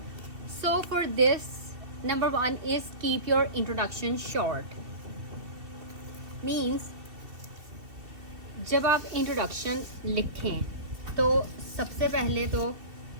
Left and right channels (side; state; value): left; late; 2.8 ms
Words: So for this, number 1 is keep your introduction short. Means जब आप introduction लिखें तो सबसे पहले तो